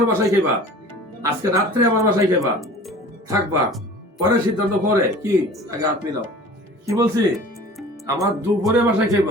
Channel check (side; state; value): both; normal; correlation 0.43